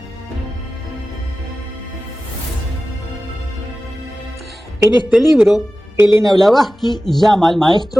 En este libro, Elena Blavatsky llama al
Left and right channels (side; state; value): both; normal; correlation 0.95